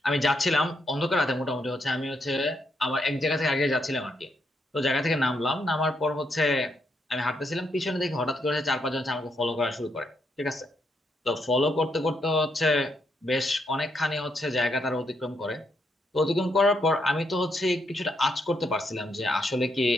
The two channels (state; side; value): normal; both; correlation 0.78